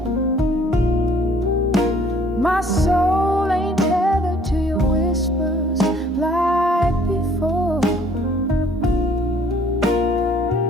My soul ain't tethered to your whispers like before.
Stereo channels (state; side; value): normal; both; correlation 0.58